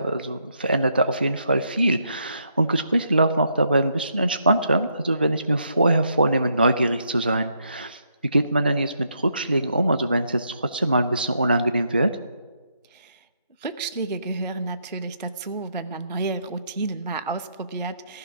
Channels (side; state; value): both; inverted; correlation -0.76